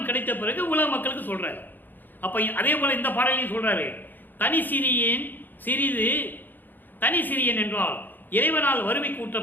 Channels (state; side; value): late; right; 0.089 ms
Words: கிடைத்த பிறகு உலக மக்களுக்கு சொல்றாரு. அப்ப அதே போல இந்த பாடலையும் சொல்றாரு. தனி சிறியேன் சிறிது, தனி சிறியன் என்றால் இறைவனால் வறுமை கூட்ட